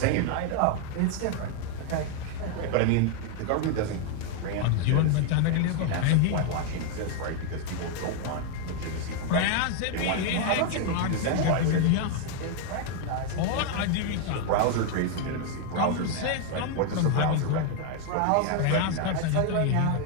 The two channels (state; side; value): different; both; correlation 0.01